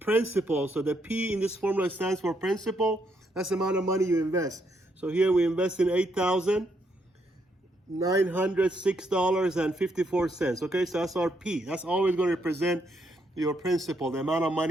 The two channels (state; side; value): normal; both; correlation 0.76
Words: principal, so the P in this formula stands for principal. That's the amount of money you invest. So here we invest in $8,906.54. Okay, so that's our P. That's always going to represent your principal, the amount of